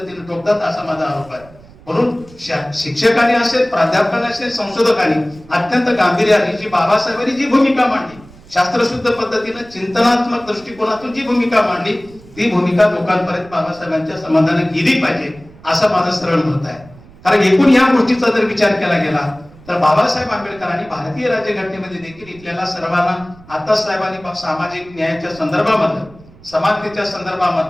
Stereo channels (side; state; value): right; noise; rumble, 23 dB below the sound